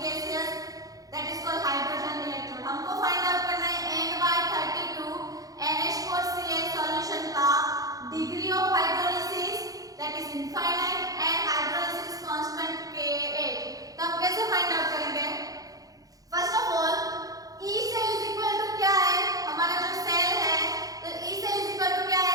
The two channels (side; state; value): left; late; 0.17 ms